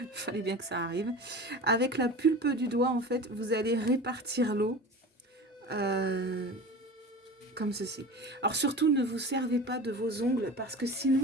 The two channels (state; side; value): normal; both; correlation 0.34